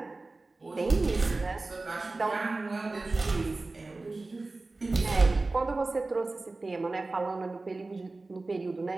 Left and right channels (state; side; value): quieter; left; 3.3 dB